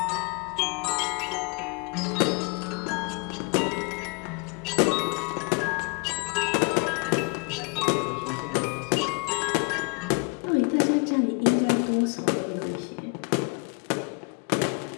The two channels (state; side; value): quieter; right; 32.5 dB